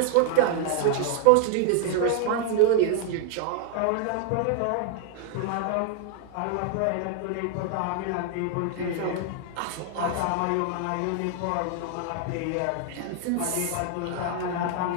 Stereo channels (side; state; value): both; different; correlation 0.00